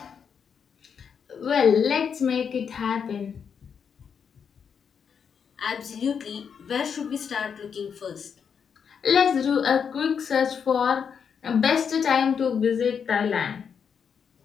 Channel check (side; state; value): right; quieter; 6.9 dB